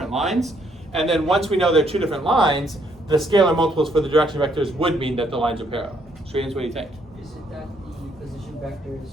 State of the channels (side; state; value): both; normal; correlation 0.70